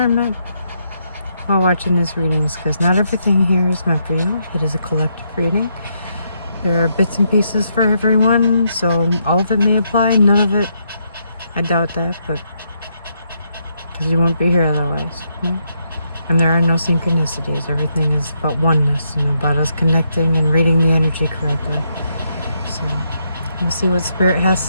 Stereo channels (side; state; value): both; inverted; correlation -0.77